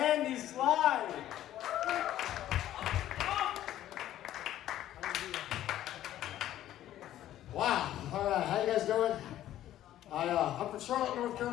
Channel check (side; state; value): right; quieter; 12.8 dB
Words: Andy Slye. Wow. All right. How you guys doing? I'm from Charlotte, North